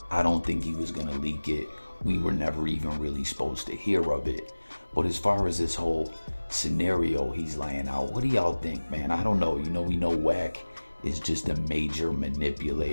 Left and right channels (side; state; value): both; inverted; correlation -1.00